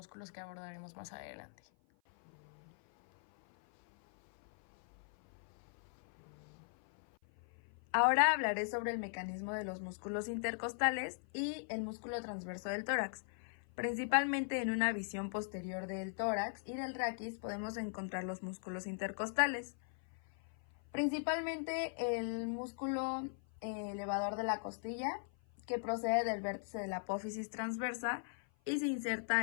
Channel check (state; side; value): silent; right; 52 dB below the other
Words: que abordaremos más adelante. Ahora hablaré sobre el mecanismo de los músculos intercostales y el músculo transverso del tórax. Principalmente en una visión posterior del tórax y del raquis podemos encontrar los músculos intercostales. Principalmente el músculo elevador de la costilla, que procede del vértice de la apófisis transversa y se